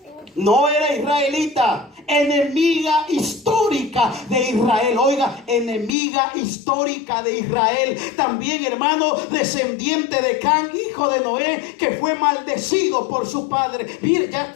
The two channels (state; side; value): drops out; right; at 5.9 s